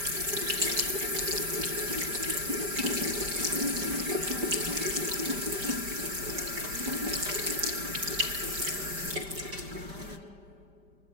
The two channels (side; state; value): left; late; 5.0 ms